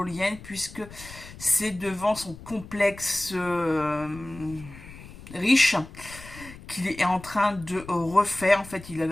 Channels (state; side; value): noise; left; rumble, 17 dB below the sound